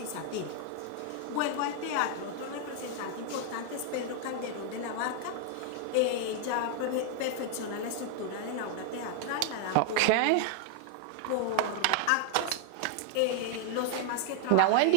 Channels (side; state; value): both; different; correlation 0.00